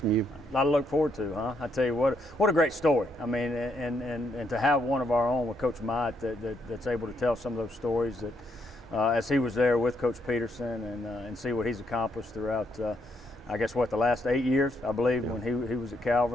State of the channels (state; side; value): normal; both; correlation 0.76